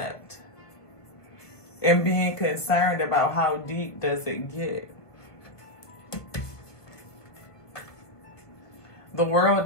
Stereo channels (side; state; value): right; late; 1.5 ms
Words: And being concerned about how deep does it get. The world